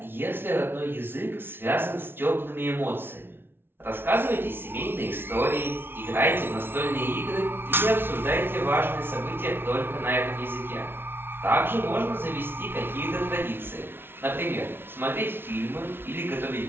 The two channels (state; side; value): late; left; 0.11 ms